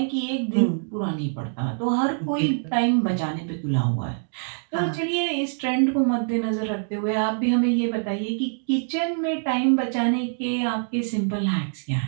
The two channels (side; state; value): left; silent; digital silence